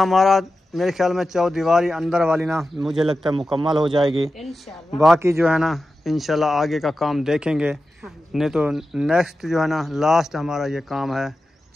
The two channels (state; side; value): normal; both; correlation 0.92